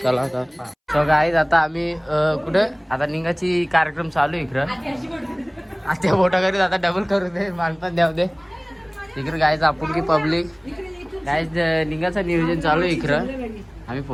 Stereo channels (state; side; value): identical; both; correlation 1.00